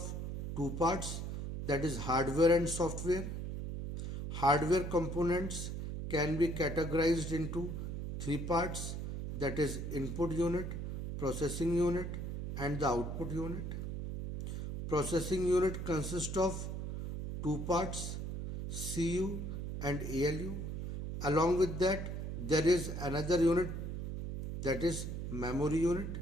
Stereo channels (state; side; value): noise; right; hum, 4 dB below the sound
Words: two parts, that is hardware and software. Hardware components can be categorized into three parts, that is input unit, processing unit and the output unit. Processing unit consists of two parts, CU and ALU. Along with that, there is another unit, that is memory unit,